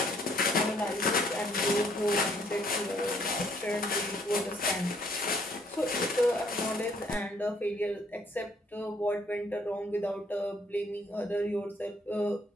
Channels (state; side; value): normal; both; correlation 0.65